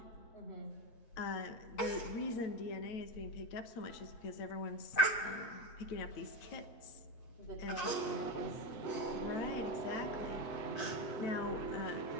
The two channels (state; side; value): late; right; 8.3 ms